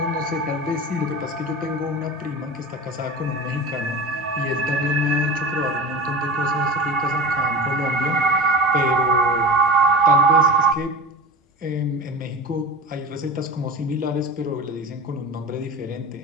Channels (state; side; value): normal; both; correlation 0.32